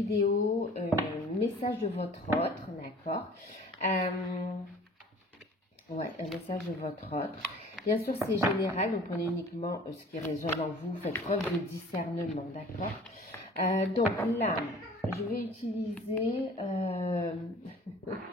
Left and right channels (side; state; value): both; normal; correlation 0.48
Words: message de votre autre, d'accord. Ouais, un message de votre autre. Bien sûr, c'est général, donc on est uniquement ce qui résonne en vous, faites preuve de discernement, d'accord. Donc là, je vais utiliser,